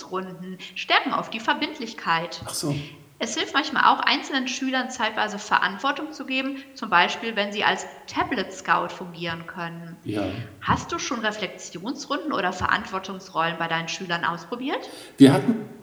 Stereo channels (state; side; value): identical; both; correlation 1.00